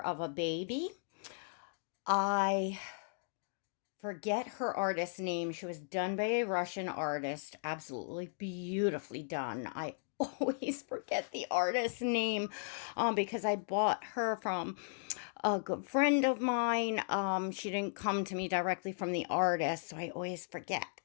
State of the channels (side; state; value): right; silent; digital silence